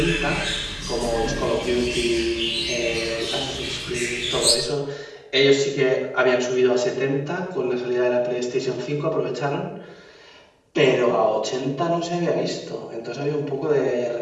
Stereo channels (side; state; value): both; identical; correlation 1.00